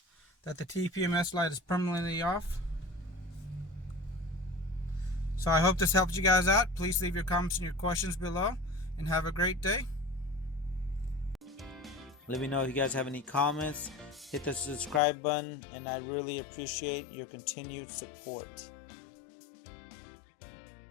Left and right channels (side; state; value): right; drops out; at 15.0 s